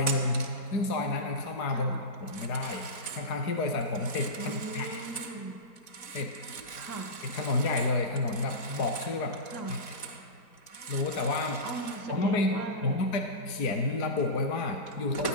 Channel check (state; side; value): late; right; 4.1 ms